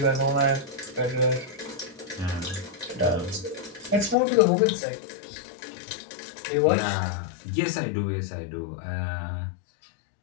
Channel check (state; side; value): drops out; right; at 4.2 s